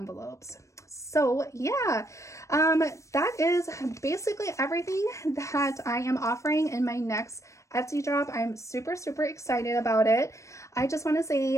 So yeah, that is basically everything that I am offering in my next Etsy drop. I'm super excited about it. I just want to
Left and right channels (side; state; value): right; late; 0.15 ms